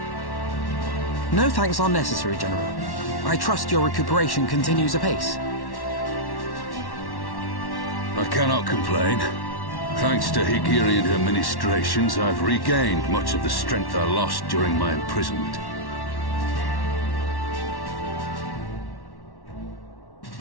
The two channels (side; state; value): right; late; 1.1 ms